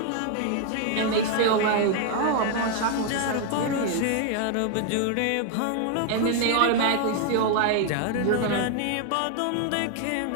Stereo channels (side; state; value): both; different; correlation 0.00